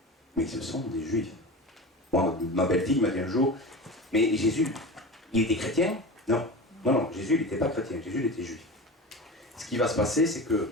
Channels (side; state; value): both; normal; correlation 0.30